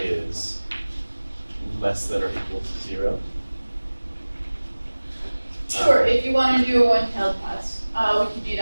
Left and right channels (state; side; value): inverted; both; correlation -1.00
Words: less than or equal to 0? Sure, if you want to do a one-tailed test, we can do